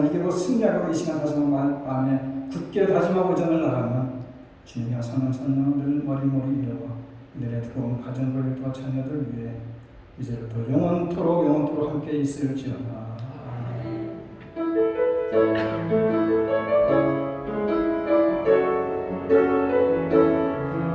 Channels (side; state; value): both; identical; correlation 1.00